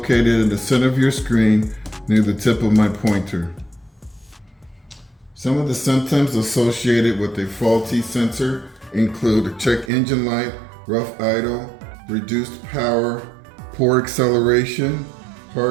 in the center of your screen near the tip of my pointer. Some of the symptoms associated with a faulty sensor include a check engine light, rough idle, reduced power, poor acceleration,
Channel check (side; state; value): left; drops out; at 9.9 s